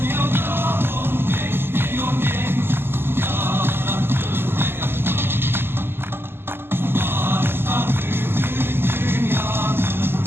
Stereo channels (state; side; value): late; left; 0.11 ms